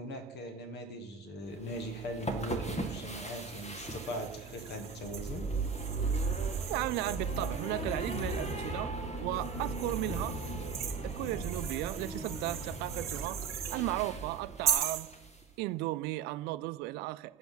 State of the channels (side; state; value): left; quieter; 6.2 dB